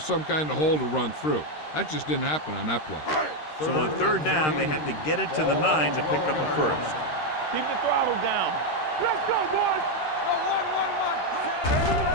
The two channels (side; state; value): right; late; 13 ms